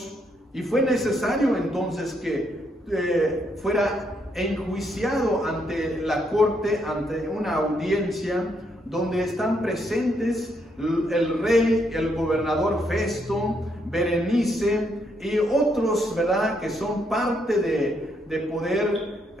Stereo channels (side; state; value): both; normal; correlation 0.75